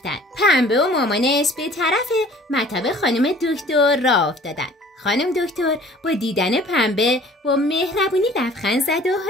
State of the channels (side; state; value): both; normal; correlation 0.51